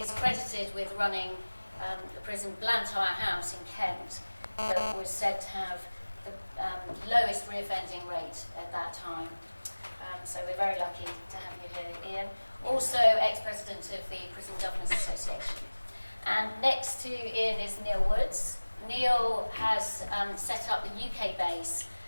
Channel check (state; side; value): inverted; both; correlation -1.00